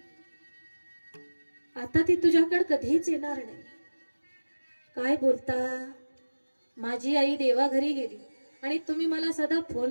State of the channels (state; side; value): inverted; both; correlation -1.00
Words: आता ती तुझ्याकडे कधीच येणार नाही. काय बोलता? माझी आई देवाघरी गेली आणि तुम्ही मला साधा